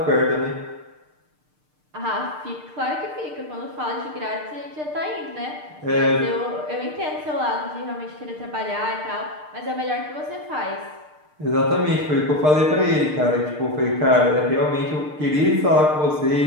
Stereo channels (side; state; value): left; late; 6.6 ms